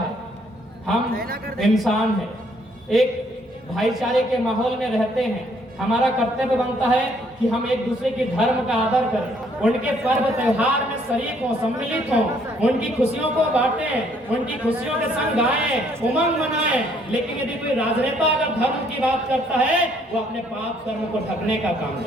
हम इंसान हैं, एक भाईचारे के माहौल में रहते हैं। हमारा कर्तव्य बनता है कि हम एक दूसरे के धर्म का आदर करें, उनके पर्व त्योहार में शरीक हों, सम्मिलित हों, उनकी खुशियों को बांटें, उनकी खुशियों के संग गाएं, उमंग मनाएं। लेकिन यदि कोई राजनेता अगर धर्म की बात करता है, वो अपने पाप कर्म को ढकने का काम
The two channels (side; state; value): both; normal; correlation 0.66